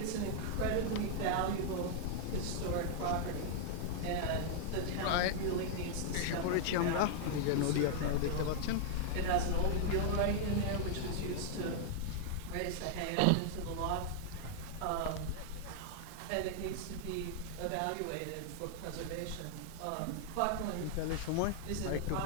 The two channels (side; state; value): both; different; correlation -0.01